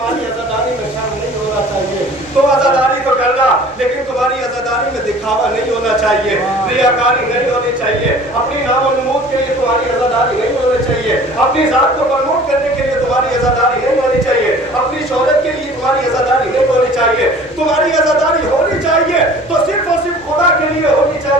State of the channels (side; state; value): left; noise; rumble, 27 dB below the sound